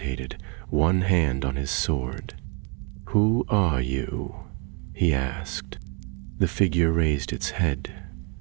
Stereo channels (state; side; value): quieter; left; 33.9 dB